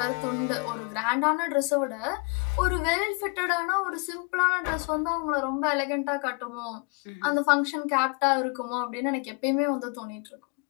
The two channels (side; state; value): right; quieter; 33.6 dB